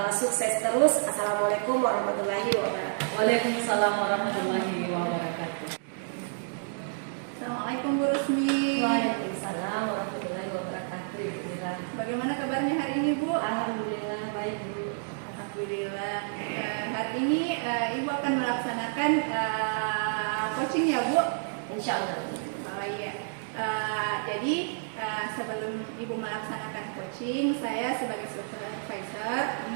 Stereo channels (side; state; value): left; silent; digital silence